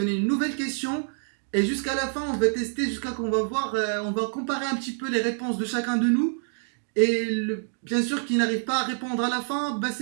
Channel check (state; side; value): silent; left; digital silence